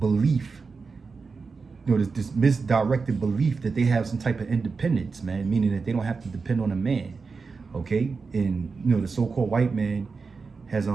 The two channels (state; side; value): quieter; left; 4.7 dB